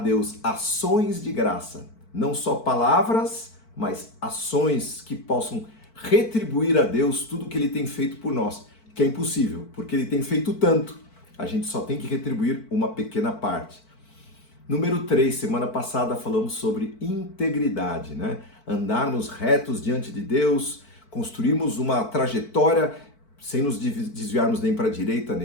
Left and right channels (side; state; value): right; late; 4.5 ms